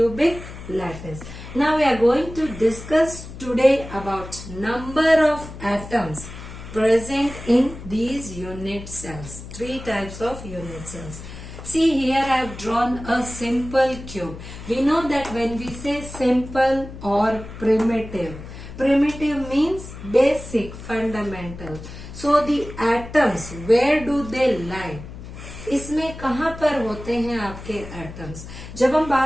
lattice. Now we are going to discuss today about number of atoms present in these unit cells. Three types of unit cells. See, here I have drawn a simple cube. We know that when we say simple or primitive, primitive means basic, fundamental. So the atoms, where do they lie? इसमें कहाँ पर होते हैं आपके atoms? जब हम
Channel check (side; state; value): left; noise; hum, 13 dB below the sound